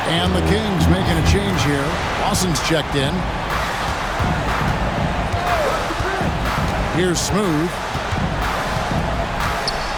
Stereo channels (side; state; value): both; identical; correlation 1.00